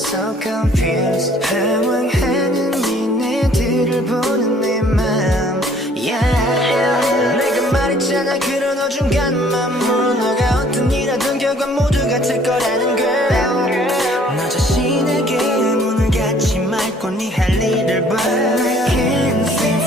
so confused. 방황하는 니네들을 보는 내 맘, yeah. 내가 말했잖아 그런 어중간한 맘으로 너가 어떤 일 하든 결과 모두 같을 거라는 걸. 너 자신에게 문을 닫지 말고 네 할 일을 봐. I can't seem to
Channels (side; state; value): both; normal; correlation 0.58